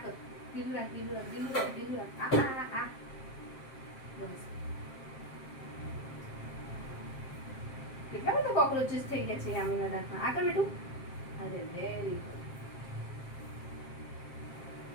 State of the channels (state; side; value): late; right; 7.5 ms